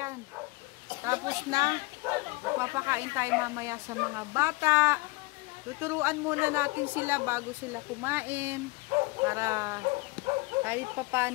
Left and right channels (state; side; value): quieter; right; 24.0 dB